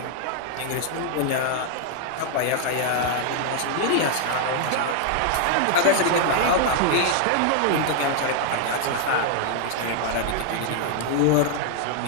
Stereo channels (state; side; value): different; both; correlation 0.00